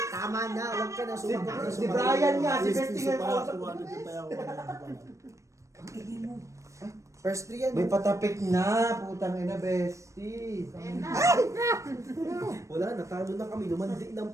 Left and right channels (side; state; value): left; late; 0.15 ms